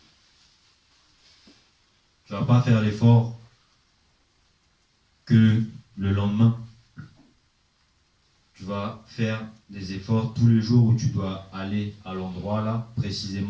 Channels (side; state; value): both; identical; correlation 1.00